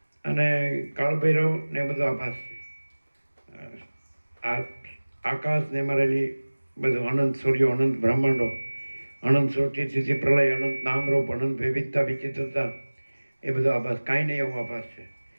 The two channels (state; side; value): inverted; both; correlation -1.00